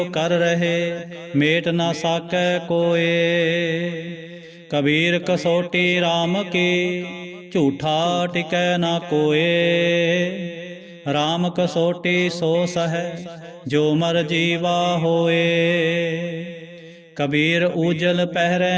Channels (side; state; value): both; identical; correlation 1.00